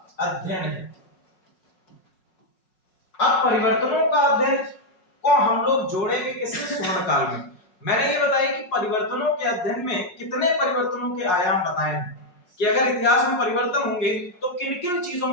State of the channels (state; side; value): late; right; 5.5 ms